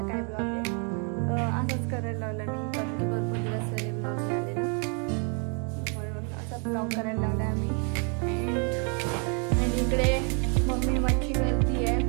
काय ब्लॉग आहे. असंच करायला लावलं मी, कारण की भरपूर दिवस झाले ब्लॉग झाले ना, म्हणून असा ब्लॉग करायला लावला आम्ही. आणि इकडे मम्मी मच्छी करती आहे.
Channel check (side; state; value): left; quieter; 38.1 dB